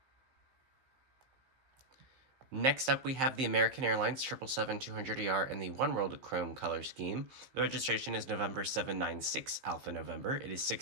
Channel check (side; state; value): left; late; 15 ms